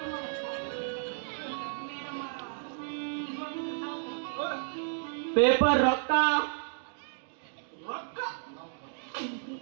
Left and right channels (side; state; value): left; silent; digital silence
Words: ಪೇಪರ್ ರೊಕ್ಕ ರೊಕ್ಕ